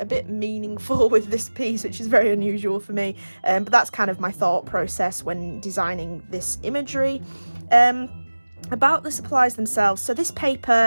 bit meaningful with this piece, which is very unusual for me, but that's kind of my thought process when designing this imagery. About the supplies themselves, so this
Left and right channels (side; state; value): both; inverted; correlation -1.00